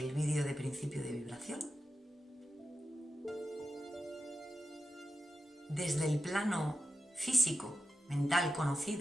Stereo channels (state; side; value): normal; both; correlation 0.90